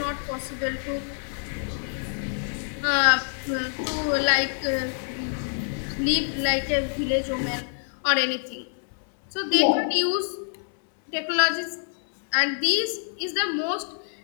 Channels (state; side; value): silent; right; 61 dB below the other